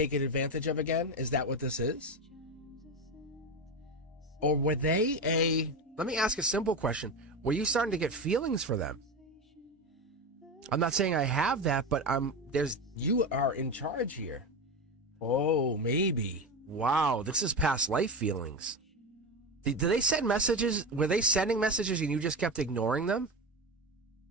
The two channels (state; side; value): normal; both; correlation 0.18